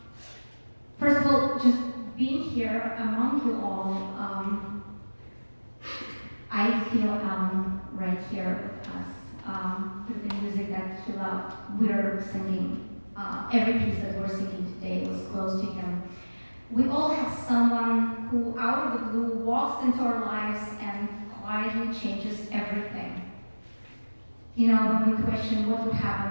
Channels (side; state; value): both; inverted; correlation -1.00